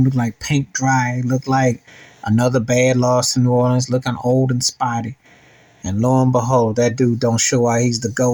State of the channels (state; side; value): identical; both; correlation 1.00